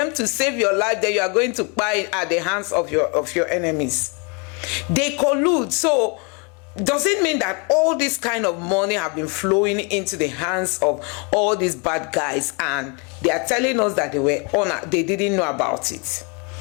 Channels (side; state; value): right; quieter; 33.6 dB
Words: to save your life, then you are going to buy at the hands of your enemies. They collude. So does it mean that all this kind of money have been flowing into the hands of all these bad guys, and they are telling us that they didn't know about it?